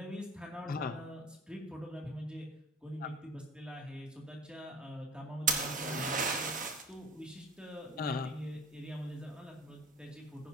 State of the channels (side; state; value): both; normal; correlation 0.41